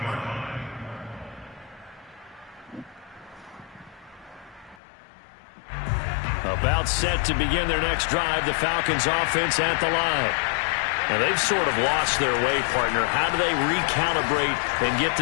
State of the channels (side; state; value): right; drops out; at 4.8 s